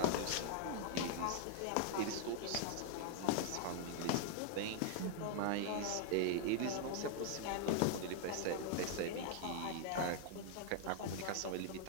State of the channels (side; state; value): both; different; correlation 0.00